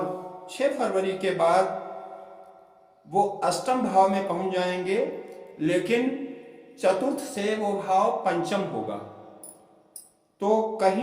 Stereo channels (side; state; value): both; identical; correlation 1.00